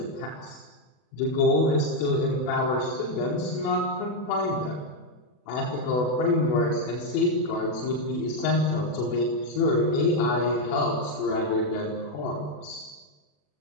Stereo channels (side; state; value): right; late; 40 ms